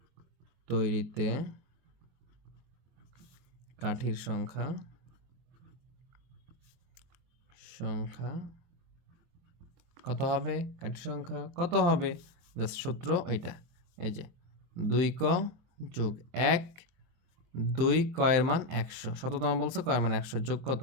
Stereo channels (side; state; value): left; late; 23 ms